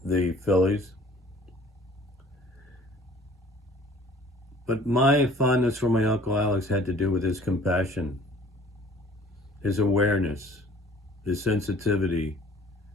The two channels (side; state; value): both; normal; correlation 0.51